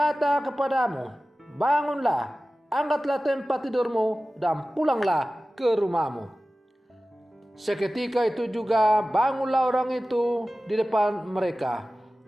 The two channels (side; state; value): both; normal; correlation 0.96